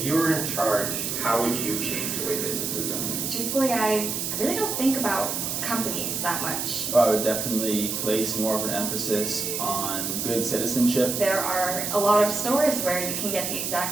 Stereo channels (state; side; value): noise; right; hiss, 2 dB below the sound